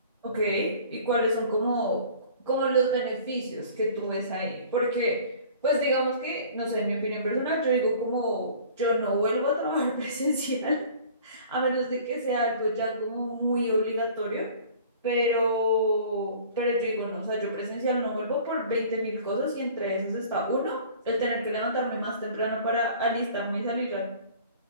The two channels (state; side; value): inverted; both; correlation -0.47